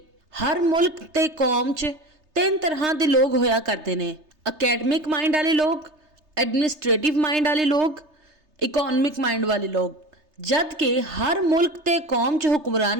ਹਰ ਮੁਲਕ ਤੇ ਕੌਮ 'ਚ ਤਿੰਨ ਤਰ੍ਹਾਂ ਦੇ ਲੋਕ ਹੋਇਆ ਕਰਦੇ ਨੇ। ਅਕੈਡਮਿਕ ਮਾइंड वाले लोग, एडमिनिस्ट्रेटिव माइंड वाले लोग, इकोनॉमिक माइंड वाले लोग। जद कि हर मुल्क ते कौम च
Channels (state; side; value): late; left; 3.3 ms